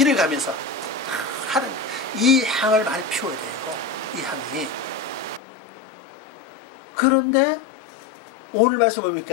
가면서 하는, 이 향을 많이 피워야 돼요. 이 향이. 그런데 오늘 말씀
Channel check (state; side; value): drops out; right; at 5.4 s